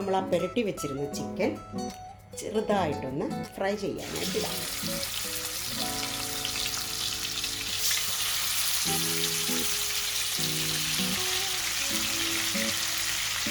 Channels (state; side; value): identical; both; correlation 1.00